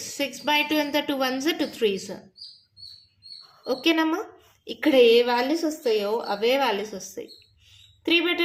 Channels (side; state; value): both; identical; correlation 1.00